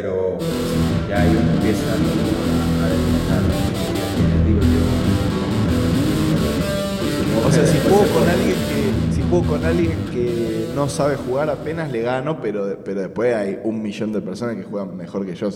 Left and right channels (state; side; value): identical; both; correlation 1.00